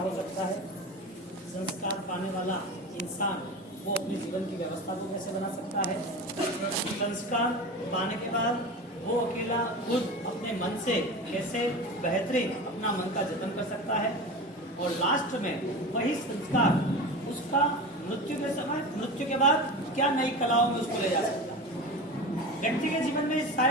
सकता है। संस्कार पाने वाला इंसान वो अपने जीवन की व्यवस्था को कैसे बना सकता है। संस्कार पाने के बाद वो अकेला खुद अपने मन से कैसे बेहतरीन अपना मन का जतन कर सकता है। और लास्ट में वही संस्कार उसका मृत्यु के बाद क्या नई कलाओं में उसको ले जा सकता है। व्यक्ति के जीवन में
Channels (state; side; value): normal; both; correlation 0.29